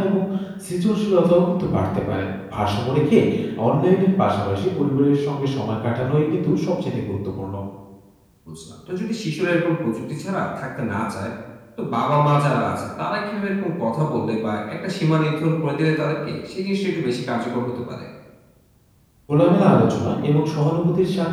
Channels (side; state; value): both; identical; correlation 1.00